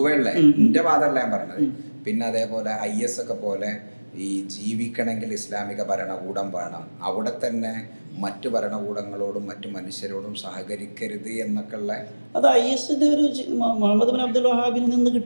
ഉള്ള എൻ്റെ വാദമല്ല ഞാൻ പറഞ്ഞത്. പിന്നെ അതേപോലെ IS ഒക്കെ പോലെ ഈ ജീവിക്കണമെങ്കിൽ ഇസ്ലാമിക ഭരണകൂടം വേണം, അവിടെ തന്നെ മറ്റു ഭരണകൂടങ്ങളോടും മറ്റു മനുഷ്യരോടും സഹകരിക്കരുത് എന്നൊക്കെ ഉള്ള അത് ISന്റെ ഒരു മുഹമ്മദ് ബിൻ അബ്ദുൽ വഹാബിൽ നിന്ന്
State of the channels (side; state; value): both; inverted; correlation -1.00